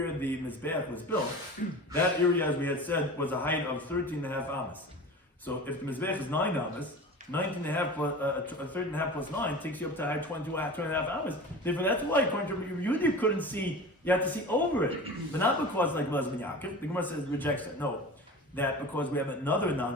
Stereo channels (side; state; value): both; normal; correlation 0.35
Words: the Mizbeach was built, that area, as we had said, was a height of 13 and a half ammas. So if the Mizbeach is 9 ammas, 19 and a half plus 13 and a half plus 9 takes you up to high 22 and a half hours. Therefore, that's why, according to Rabbi Yehuda, you couldn't see, you had to see over it. But not because, like Belazman Yaakov, the Gemara says, rejects it. No, that because we have another